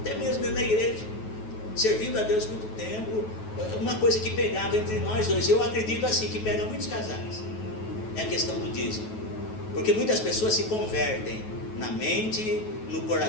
mesmo dentro da igreja, servindo a Deus muito tempo, uma coisa que pegava entre nós dois, eu acredito assim, que pega muitos casais, é a questão do dízimo. Porque muitas pessoas se convertem na mente, no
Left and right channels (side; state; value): right; late; 9.3 ms